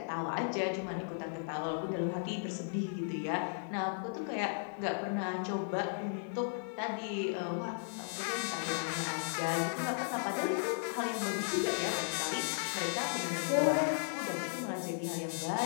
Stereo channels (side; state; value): right; silent; 54 dB below the other